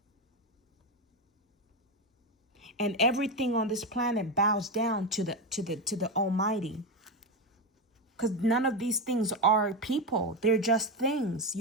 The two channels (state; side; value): normal; both; correlation 0.13